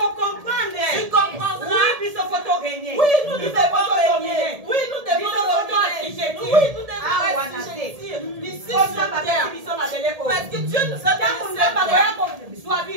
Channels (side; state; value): left; late; 1.7 ms